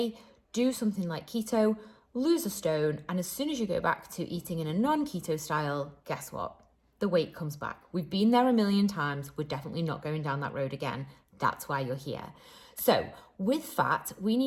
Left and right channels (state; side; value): identical; both; correlation 1.00